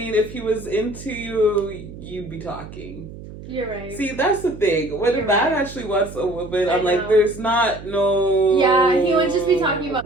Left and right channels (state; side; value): noise; right; hum, 14 dB below the sound